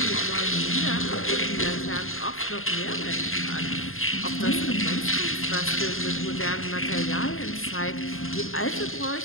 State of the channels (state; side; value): late; right; 0.61 ms